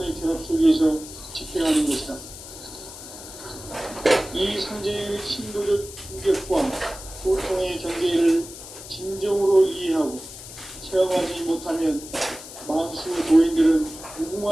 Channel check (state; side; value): noise; left; hiss, 14 dB below the sound